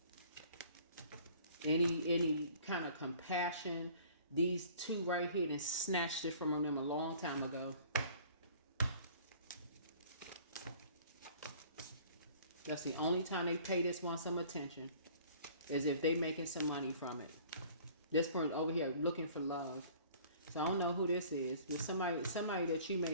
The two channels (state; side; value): inverted; both; correlation -0.51